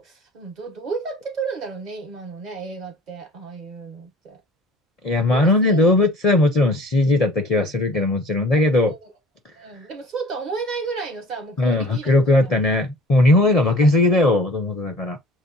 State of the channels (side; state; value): both; normal; correlation 0.48